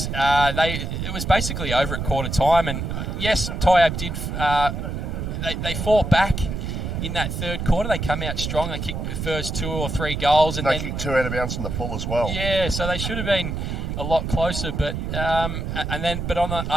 it was basically over at quarter time. And yes, Tyab did. They fought back. In that third quarter, they come out strong. They kicked the first 2 or 3 goals, and they kicked 2 out of bounds in the full as well. Yeah, so they should have been a lot closer. But but on the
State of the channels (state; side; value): noise; right; rumble, 4 dB below the sound